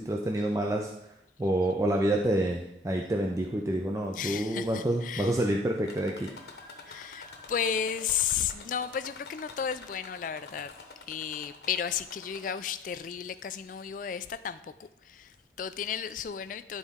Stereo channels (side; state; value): both; normal; correlation 0.57